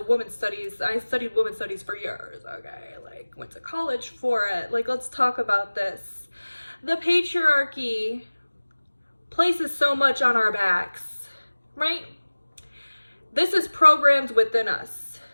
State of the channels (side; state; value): both; inverted; correlation -1.00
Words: woman studies. I studied women studies for years, okay? Like, went to college for it. Like, let's talk about this. The patriarchy places so much on our backs, right? This is programmed within us,